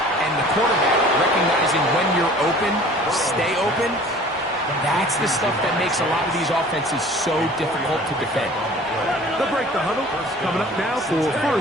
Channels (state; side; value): normal; both; correlation 0.47